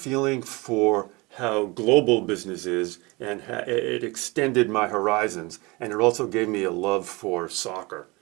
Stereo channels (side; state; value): left; quieter; 25.0 dB